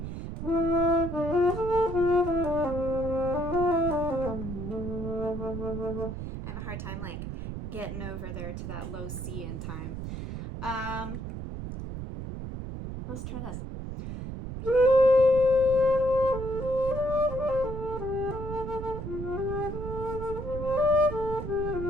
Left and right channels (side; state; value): right; noise; rumble, 7 dB below the sound